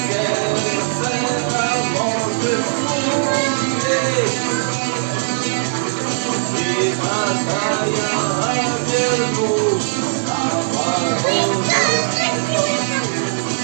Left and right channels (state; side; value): silent; left; digital silence